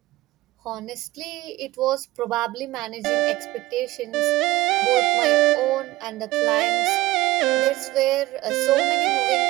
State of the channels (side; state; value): left; quieter; 18.4 dB